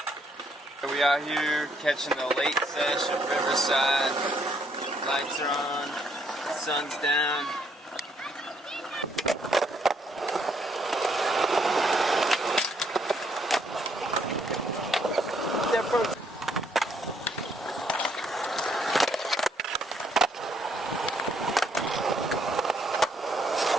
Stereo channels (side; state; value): both; normal; correlation 0.70